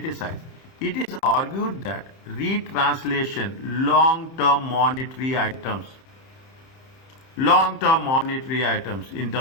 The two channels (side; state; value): right; late; 30 ms